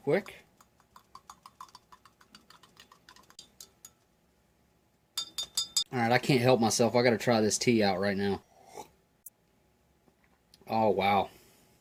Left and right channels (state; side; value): identical; both; correlation 1.00